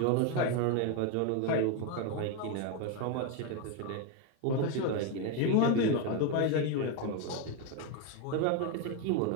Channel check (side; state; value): both; different; correlation 0.02